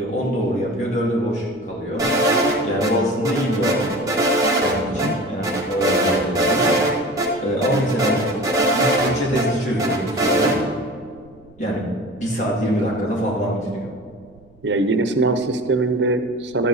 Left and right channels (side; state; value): right; noise; rumble, 28 dB below the sound